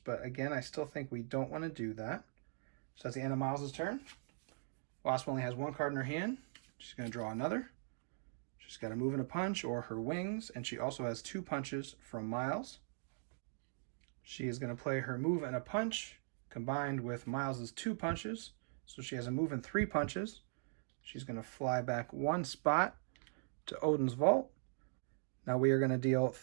again, I still think we don't want to do that. So that's the end of Miles' turn. Wasp only has 1 card in her hand. She's going to draw another. She's got a move and a punch or her wings, and she also has 2 punches from Miles. She is going to play her move and a punch combined with Miles's 2 punches. So she has a move and 3 punches. She's going to fly back 1 spot to Odin's vault. Now we are going to deal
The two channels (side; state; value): left; silent; digital silence